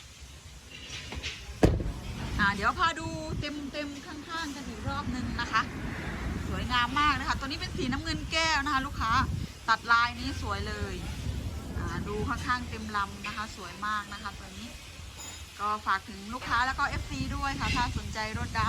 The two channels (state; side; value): identical; both; correlation 1.00